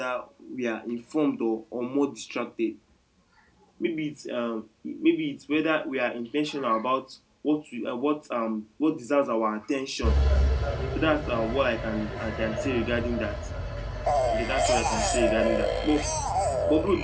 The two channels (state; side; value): identical; both; correlation 1.00